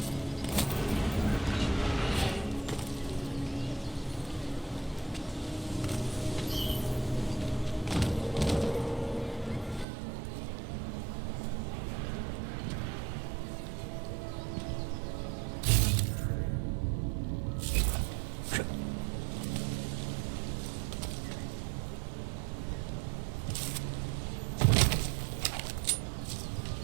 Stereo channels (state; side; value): drops out; left; at 9.9 s